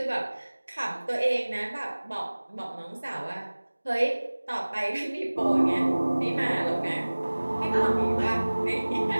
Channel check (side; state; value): both; inverted; correlation -1.00